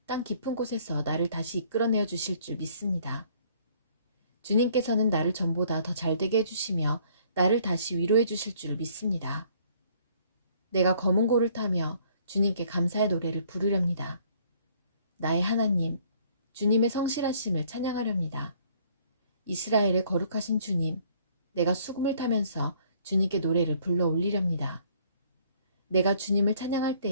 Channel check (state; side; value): inverted; both; correlation -0.60